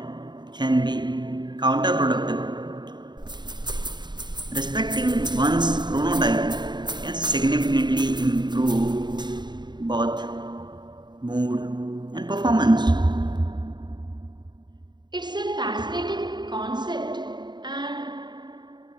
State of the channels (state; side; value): late; left; 0.21 ms